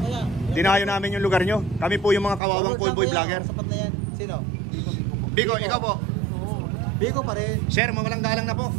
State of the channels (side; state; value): left; drops out; at 2.4 s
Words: Dinayo namin yung lugar nyo. Kami po yung mga kawawang callboy vlogger. Sino? Biko, ikaw po. Biko pa rin. Sir, mawalang galang na po.